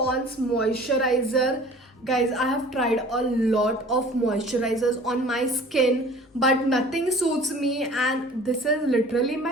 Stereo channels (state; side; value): normal; both; correlation 0.46